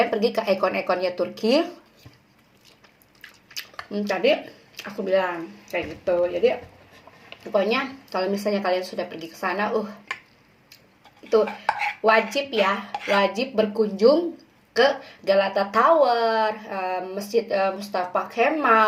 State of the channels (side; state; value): both; identical; correlation 1.00